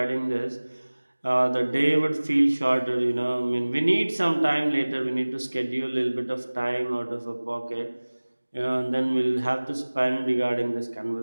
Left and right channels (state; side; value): inverted; both; correlation -1.00